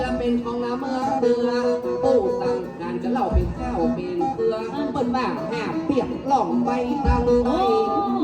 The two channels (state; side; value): identical; both; correlation 1.00